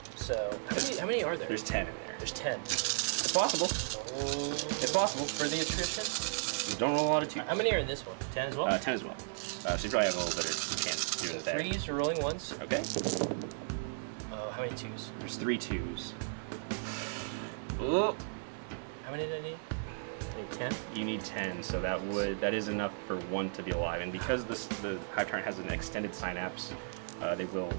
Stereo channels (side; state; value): left; silent; digital silence